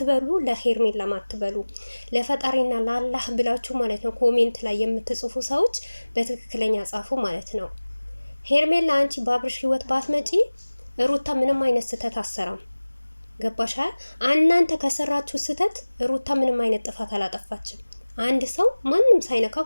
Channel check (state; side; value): inverted; both; correlation -1.00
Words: ለሄርሜላ ማትበሉ ለፈጣሪና ለአላህ ብላችሁ ማለት ነው ኮሜንት ላይ የምትጽፉ ሰዎች በትክክለኛ ጻፉ ማለት ነው። ሄርሜላ አንቺ በአብርሽ ህይወት ባትመጪ ሩታ ምንም አይነት ስህተት አሰራም። ገባሻል? እናንተ ከሰራችሁ ስህተት ሩታ ምንም አይነት ጥፋት አላጠፋችም። አንድ ሰው ማንም ሳይነካው